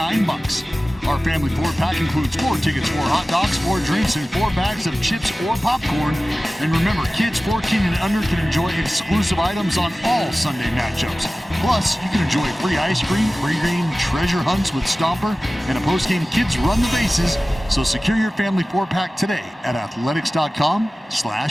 Our family 4-pack includes 4 tickets, 4 hot dogs, 4 drinks, and 4 bags of chips or popcorn. And remember, kids 14 and under can enjoy exclusive items on all Sunday matchups. Plus, you can enjoy free ice cream, pre-game treasure hunts with Stomper, and a post-game Kids Run the Bases. So secure your family 4-pack today at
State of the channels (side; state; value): both; normal; correlation 0.97